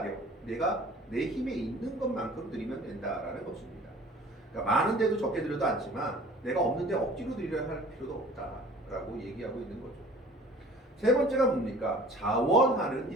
내가 내 힘에 있는 것만큼 드리면 된다라는 것입니다. 그러니까 많은데도 적게 드려도 않지만 내가 없는데 억지로 드리려 할 필요도 없다라고 얘기하고 있는 거죠. 세 번째가 뭡니까? 자원하는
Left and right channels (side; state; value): both; normal; correlation 0.48